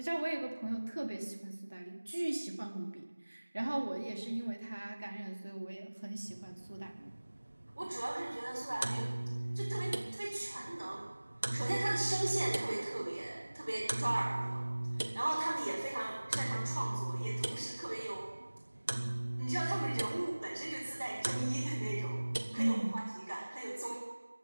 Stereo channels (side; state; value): both; inverted; correlation -1.00